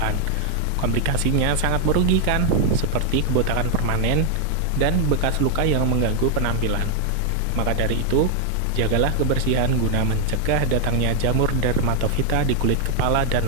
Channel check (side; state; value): both; different; correlation 0.00